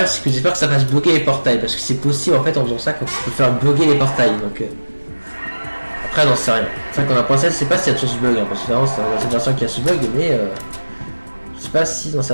c'est que j'espère que ça fasse bloquer les portails. Parce que c'est possible, en fait, en faisant ça, qu'on peut faire bloquer les portails. Donc, après, j'en sais rien. C'est vrai qu'on a pensé, je sais pas s'il y a toujours ce bug. Hein, parce que vraiment, c'est dans cette version qu'il y a ce bug. Mais je sais pas si dans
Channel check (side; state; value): both; inverted; correlation -1.00